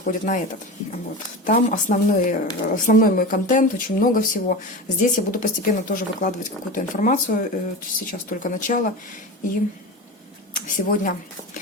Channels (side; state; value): both; normal; correlation 0.27